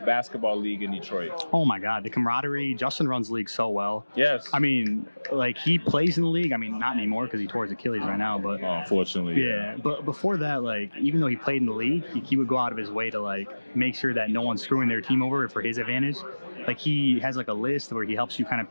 basketball league in Detroit? Oh my God, the camaraderie. Justin runs the league so well. Yes. I mean, he plays in the league. I mean, not anymore because he tore his Achilles right now. But unfortunately, yeah. But before that, even though he played in the league, he would go out of his way to make sure that no one's screwing their team over for his advantage. He has a list where he helps you kind of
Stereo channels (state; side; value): inverted; both; correlation -1.00